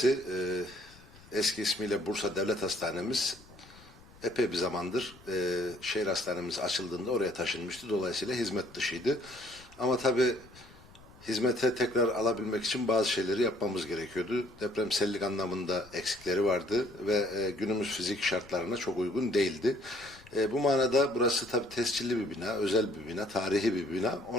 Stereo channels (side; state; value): left; noise; rumble, 23 dB below the sound